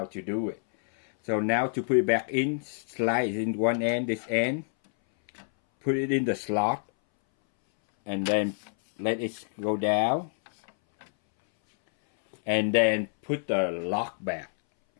to do it. So now to put it back in, slide in one end, this end, put it in the slot, and then let it go down, and then put the lock back.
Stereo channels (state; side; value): silent; right; 60 dB below the other